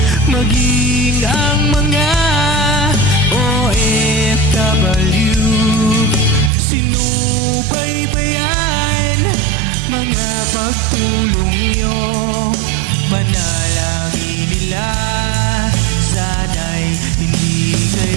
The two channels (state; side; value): drops out; left; at 6.5 s